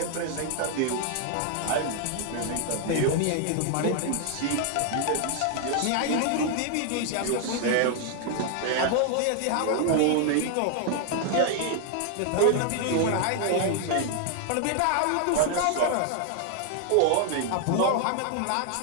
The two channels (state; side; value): different; both; correlation 0.00